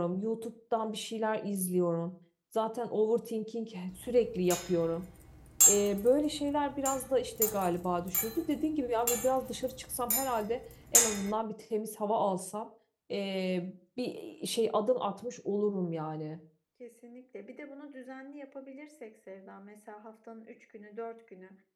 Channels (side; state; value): both; identical; correlation 1.00